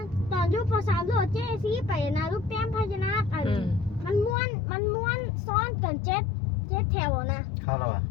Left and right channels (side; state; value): right; drops out; at 4.4 s